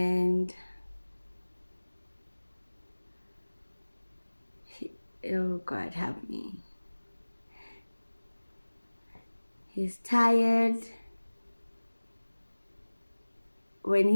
oh God, help me. He's tired when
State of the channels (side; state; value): both; inverted; correlation -1.00